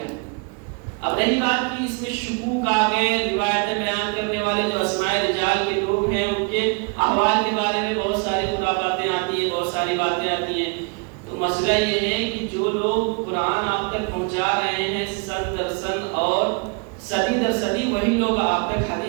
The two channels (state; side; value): quieter; left; 32.7 dB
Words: ہے۔ اب رہی بات کی اس میں شکوک آ گئے، روایتیں بیان کرنے والے جو اسماء رجال کے لوگ ہیں ان کے احوال کے بارے میں بہت ساری خرافاتیں آتی ہیں، بہت ساری باتیں آتی ہیں۔ تو مسئلہ یہ ہے کہ جو لوگ قرآن آپ تک پہنچا رہے ہیں سن در سن اور صدی در صدی، وہی لوگ آپ تک